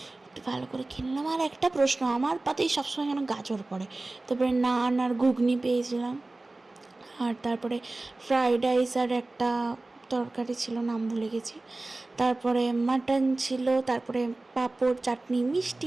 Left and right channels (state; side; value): quieter; left; 3.0 dB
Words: একটু ভালো করে খেয়ে নিলাম। আর একটা প্রশ্ন, আমার পাতেই সবসময় কেন গাজর পড়ে। তারপরে নান আর ঘুগনি পেয়েছিলাম। আর তারপরে ফ্রাইড রাইস আর একটা তরকারি ছিল, নাম ভুলে গেছি। তারপরে মাটন ছিল, তারপরে পাঁপড়, চাটনি,